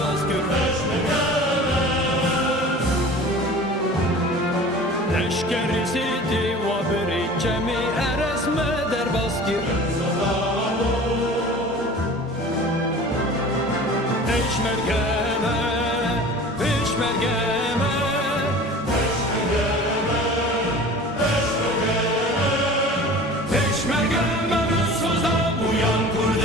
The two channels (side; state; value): both; normal; correlation 0.41